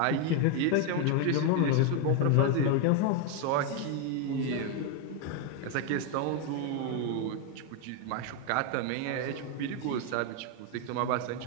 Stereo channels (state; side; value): different; both; correlation 0.01